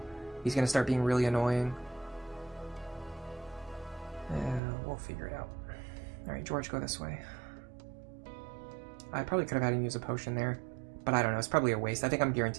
He's going to start being really annoying. We'll figure it out. Alright, George, go this way. I probably could have had him use a potion there, but I don't know. It's probably a waste. I think I'm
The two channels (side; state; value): left; drops out; at 4.6 s